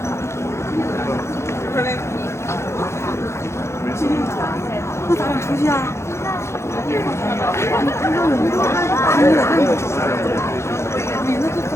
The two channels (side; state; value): right; late; 0.13 ms